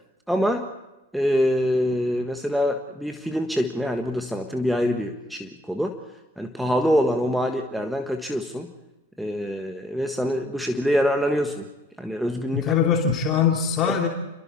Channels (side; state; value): both; normal; correlation 0.67